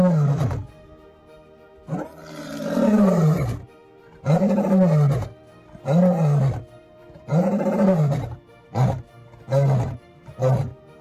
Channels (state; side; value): identical; both; correlation 1.00